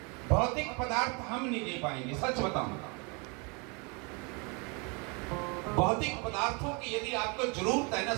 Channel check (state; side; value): quieter; left; 31.6 dB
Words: भौतिक पदार्थ हम नहीं दे पाएंगे, सच बताऊं। भौतिक पदार्थों की यदि आपको जरूरत है ना,